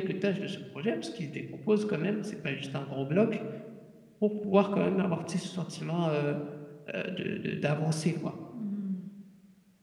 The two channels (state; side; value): identical; both; correlation 1.00